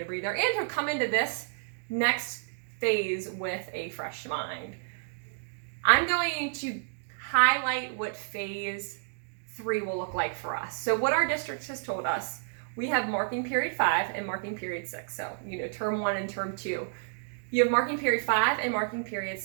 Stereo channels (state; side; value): silent; left; digital silence